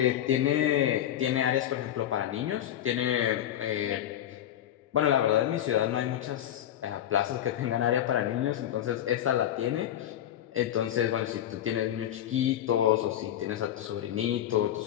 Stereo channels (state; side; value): quieter; right; 11.3 dB